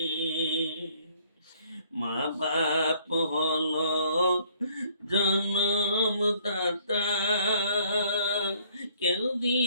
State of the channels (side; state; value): both; inverted; correlation -0.62